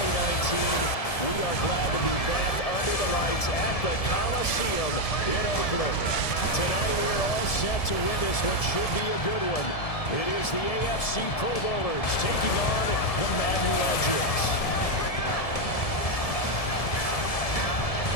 We are glad to be back under the lights at the Coliseum in Oakland. Tonight we are all set to witness what should be a good one. It is the AFC Pro Bowlers taking on the Madden Legends.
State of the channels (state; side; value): late; right; 1.7 ms